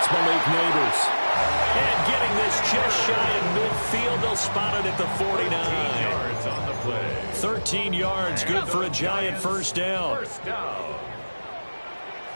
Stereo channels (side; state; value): both; inverted; correlation -1.00